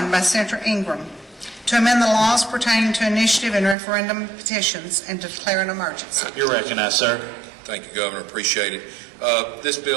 by Senator Ingram to amend the laws pertaining to initiative and referendum petitions and to declare an emergency. You're recognized, sir. Thank you, Governor. Appreciate it. This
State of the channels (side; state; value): left; drops out; at 3.8 s